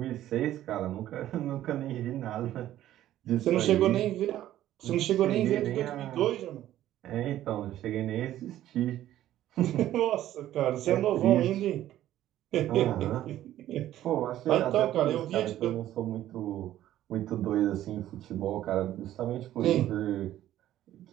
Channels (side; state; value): left; quieter; 13.1 dB